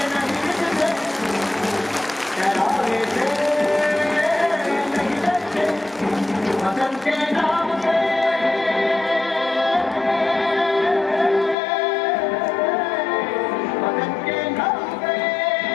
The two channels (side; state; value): right; drops out; at 11.6 s